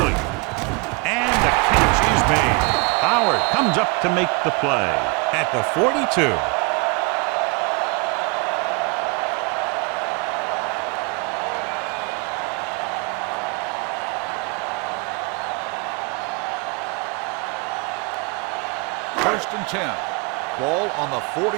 And the catch is made. Howard comes up to make the play at the 42. First and 10. Ball on the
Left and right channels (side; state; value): left; quieter; 29.8 dB